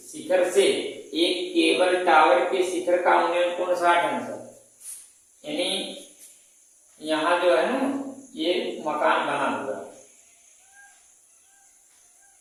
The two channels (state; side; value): identical; both; correlation 1.00